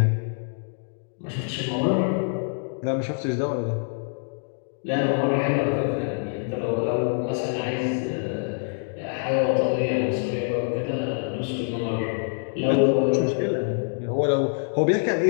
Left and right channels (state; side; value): silent; right; 61 dB below the other